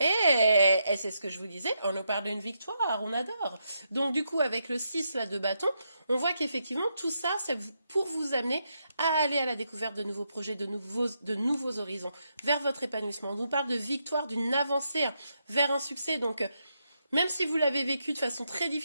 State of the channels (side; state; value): both; inverted; correlation -0.81